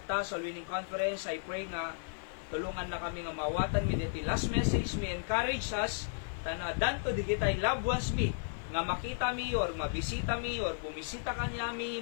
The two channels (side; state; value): right; silent; digital silence